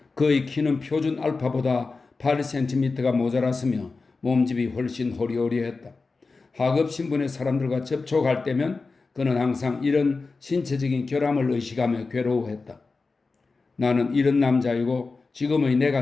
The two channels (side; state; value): right; quieter; 4.0 dB